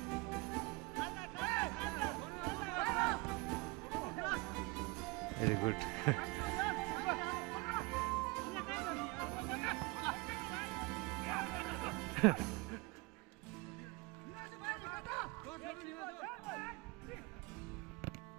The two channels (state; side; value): quieter; left; 25.6 dB